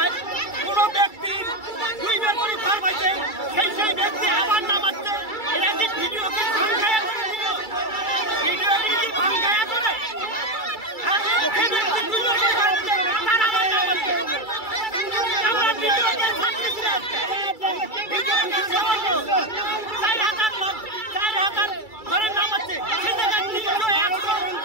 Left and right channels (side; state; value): right; late; 2.3 ms